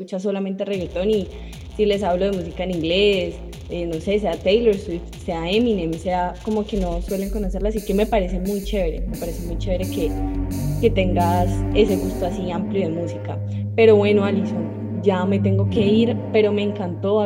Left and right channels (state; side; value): identical; both; correlation 1.00